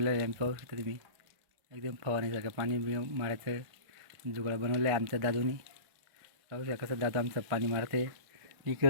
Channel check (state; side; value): late; left; 1.5 ms